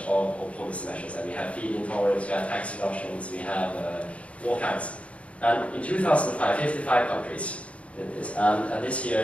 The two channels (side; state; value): right; late; 0.064 ms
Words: of policy measures, and we have feed-in tariffs, we have tax reductions, we have all kinds. And in 2005, 55 countries did this, and this year